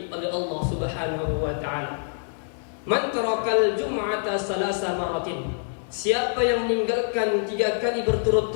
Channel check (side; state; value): right; silent; digital silence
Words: oleh Allah Subhanahu wa ta'ala. Man tarakal jum'ata salasa maratin. Siapa yang meninggalkan 3 kali